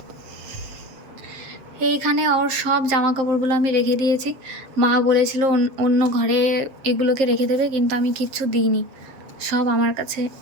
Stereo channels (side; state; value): left; late; 7.6 ms